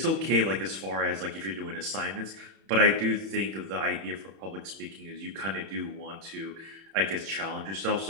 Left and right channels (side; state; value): left; late; 31 ms